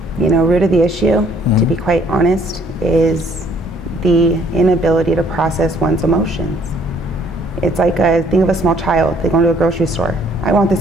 Root of the issue, to be quite honest, is the inability to process one's emotions. It's like think of a small child. They go into a grocery store. I want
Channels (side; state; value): both; normal; correlation 0.62